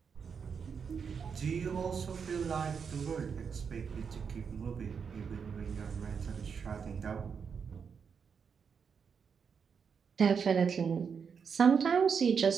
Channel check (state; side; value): quieter; left; 6.3 dB